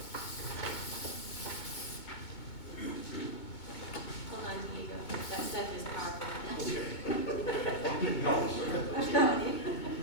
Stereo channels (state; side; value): late; right; 2.2 ms